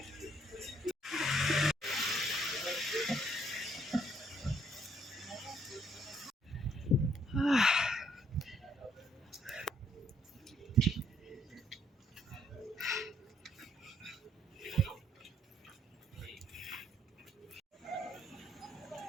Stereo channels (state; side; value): normal; both; correlation 0.68